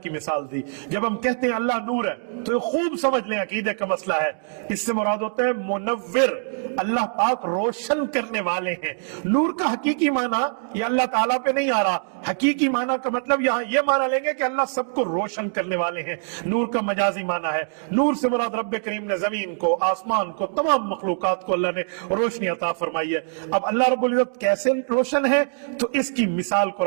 की मिसाल दी। जब हम कहते हैं अल्लाह नूर है तो ये खूब समझ लें अकीदे का मसला है। इससे मुराद होता है मुनव्विर, अल्लाह पाक रोशन करने वाले हैं। नूर का हकीकी माना ये अल्लाह ताला पे नहीं आ रहा, हकीकी माना का मतलब यहाँ ये माना लेंगे कि अल्लाह सबको रोशन करने वाले हैं। नूर का मजाजी माना है, नूर से मुराद रब्बे करीम ने जमीन को, आसमान को, तमाम मखलूकात को अल्लाह ने रोशनी अता फरमाई है। अब अल्लाह रब्बुल इज्जत कैसे रोशन है तो इसकी मिसाल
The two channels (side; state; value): left; silent; digital silence